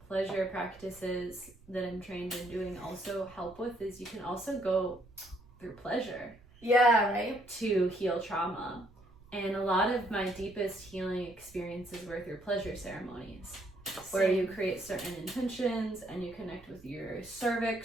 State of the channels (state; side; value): noise; right; rumble, 24 dB below the sound